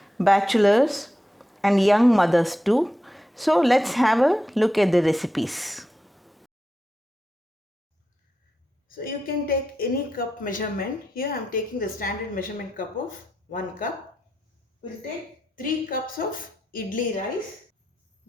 bachelors and young mothers too. So let's have a look at the recipes. So you can take any cup measurement. Here I am taking the standard measurement cup of 1 cup. We'll take 3 cups of idli rice.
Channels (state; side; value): normal; both; correlation 0.87